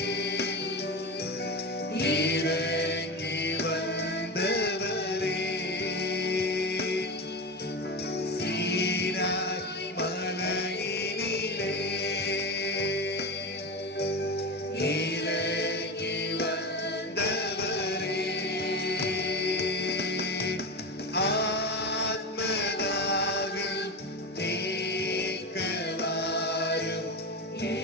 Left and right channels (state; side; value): normal; both; correlation 0.22